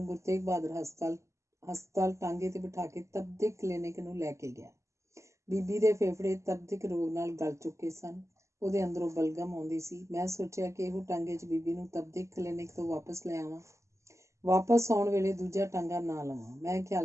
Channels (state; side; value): late; left; 0.14 ms